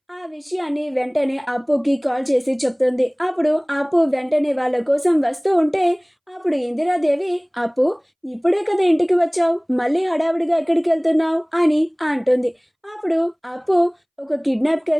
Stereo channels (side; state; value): both; identical; correlation 1.00